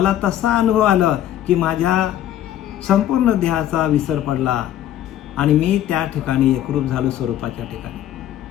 तसा अनुभव आला की माझ्या संपूर्ण देहाचा विसर पडला आणि मी त्या ठिकाणी एकरूप झालो स्वरूपाच्या ठिकाणी.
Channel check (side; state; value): right; quieter; 11.8 dB